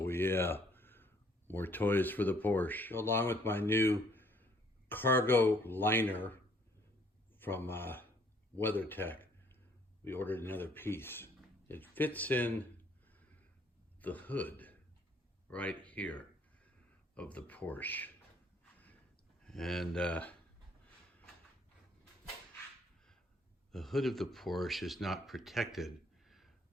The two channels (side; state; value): both; normal; correlation 0.63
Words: yeah, more toys for the Porsche. Along with my new cargo liner from WeatherTech, we ordered another piece. It fits in the hood right here of the Porsche. And the hood of the Porsche is not protected